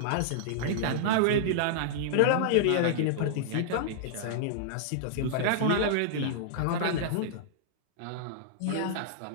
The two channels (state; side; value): different; both; correlation -0.01